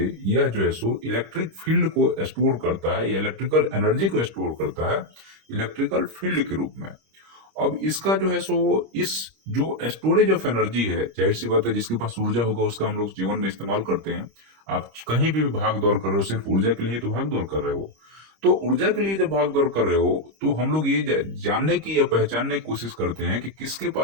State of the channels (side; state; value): left; late; 25 ms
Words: यह जो है सो इलेक्ट्रिक फील्ड को स्टोर करता है या इलेक्ट्रिकल एनर्जी को स्टोर करता है इलेक्ट्रिकल फील्ड के रूप में। अब इसका जो है सो इस जो स्टोरेज ऑफ एनर्जी है, जाहिर सी बात है जिसके पास ऊर्जा होगा उसका हम लोग जीवन में इस्तेमाल करते हैं। आप कहीं भी भाग दौड़ कर रहे हो सिर्फ ऊर्जा के लिए तो भाग दौड़ कर रहे हो। तो ऊर्जा के लिए जब भाग दौड़ कर रहे हो तो हम लोग ये जानने की या पहचानने की कोशिश करते हैं कि किसके